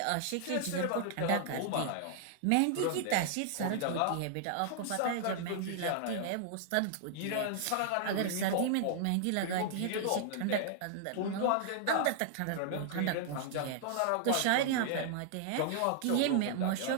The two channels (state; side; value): different; both; correlation -0.01